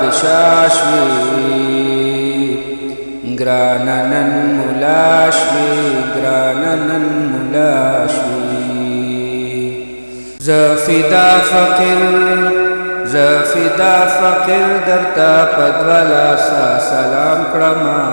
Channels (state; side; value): inverted; both; correlation -1.00